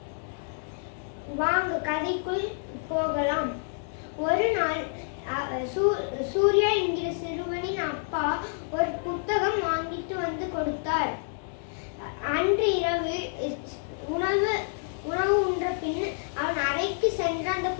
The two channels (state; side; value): silent; right; digital silence